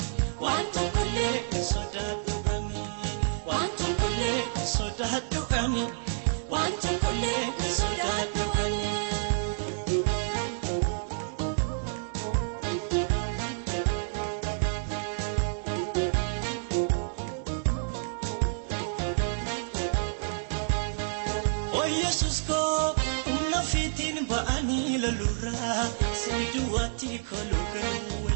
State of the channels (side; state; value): left; silent; digital silence